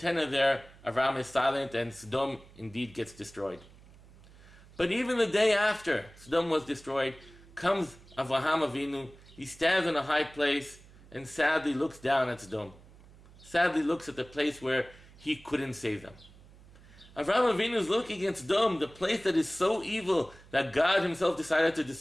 are there, Avraham is silent and Sodom indeed gets destroyed. But even the day after Sodom was destroyed, comes Avraham Avinu. He stands in a high place and sadly looks down at Sodom. Sadly looks at the place where he couldn't save them. Avraham Avinu is looking at Sodom, the place that is so evil that God himself decided to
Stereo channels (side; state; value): right; noise; hum, 23 dB below the sound